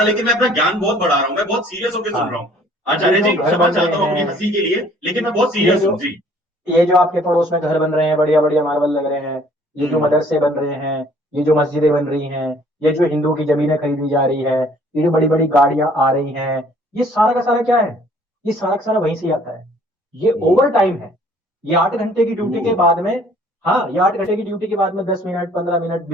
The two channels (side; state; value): both; normal; correlation 0.57